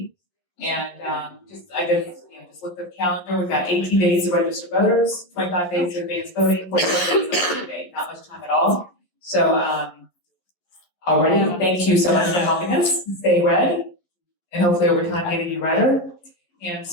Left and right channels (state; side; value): late; right; 11 ms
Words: And just looked at the calendar. We've got 18 days to register voters, 25 days of advance voting, 45 days of election day. Not much time at all. So already, thank you so much for helping us stay red, and hopefully over time getting you redder. And